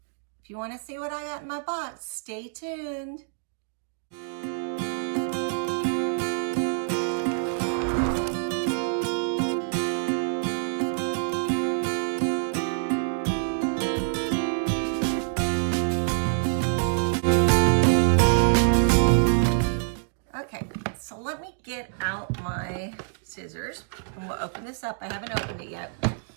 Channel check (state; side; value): silent; left; digital silence